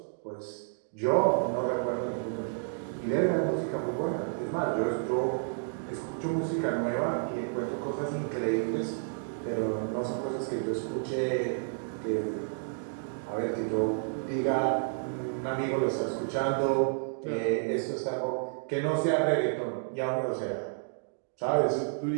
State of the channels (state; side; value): silent; left; digital silence